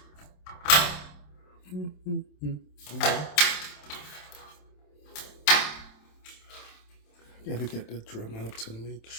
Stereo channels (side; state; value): right; late; 27 ms